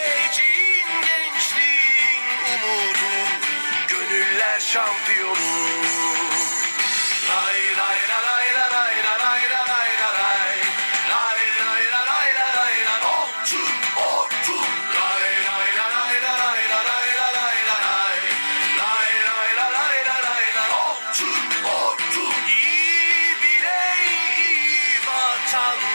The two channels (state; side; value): inverted; both; correlation -1.00